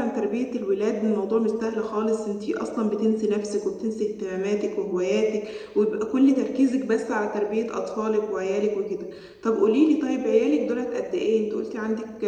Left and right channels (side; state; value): both; identical; correlation 1.00